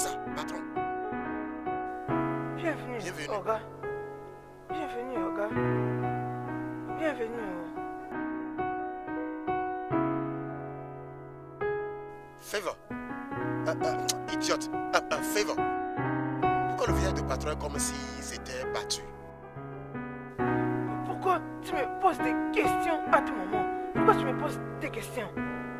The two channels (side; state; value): both; identical; correlation 1.00